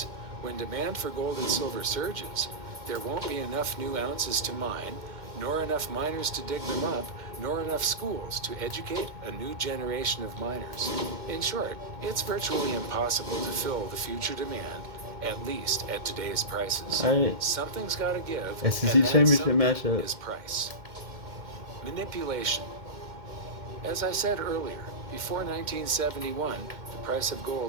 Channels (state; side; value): late; left; 2.1 ms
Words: when demand for gold and silver surges, there won't be enough new ounces to mine, nor enough miners to dig them up, nor enough schools to educate a new generation of miners. In short, it's virtually impossible to fill the future demand, at least at today's prices. Alright. Something's got to give, SEC and that championship something matchup. is price. Manipulation. As I said earlier, before 1971, the price of